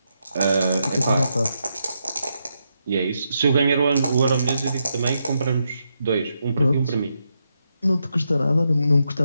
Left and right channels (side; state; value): both; inverted; correlation -0.83